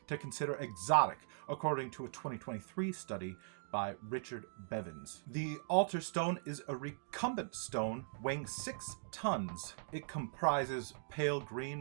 to consider exotic, according to a 2023 study by Richard Bevins. The altar stone is a recumbent stone weighing 6 tons. It comprises pale green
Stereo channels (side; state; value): left; silent; digital silence